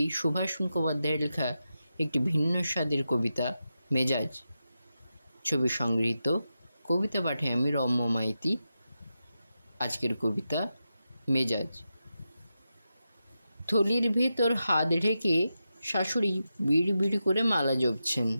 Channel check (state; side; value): inverted; both; correlation -0.89